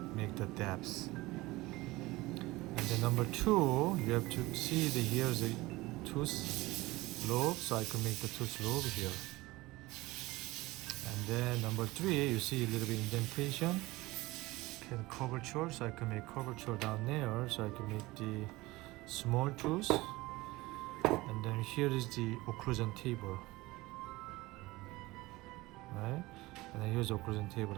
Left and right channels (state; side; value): quieter; left; 20.3 dB